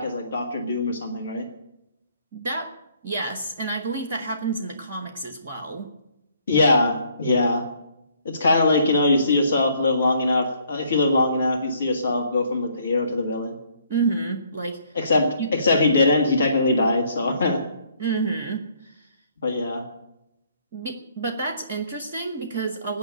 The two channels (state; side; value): inverted; both; correlation -0.65